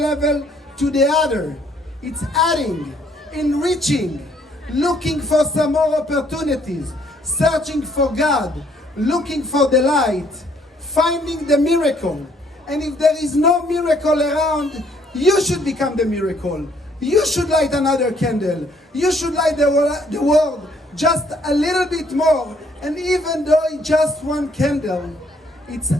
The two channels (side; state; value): both; normal; correlation 0.65